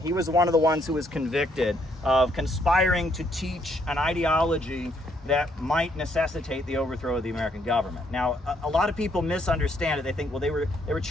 he was one of the ones who was convicted of conspiring to teach an ideology that might necessitate the overthrow of the American government. Now, a lot of people misunderstand it. They think, well, they were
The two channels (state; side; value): normal; both; correlation 0.71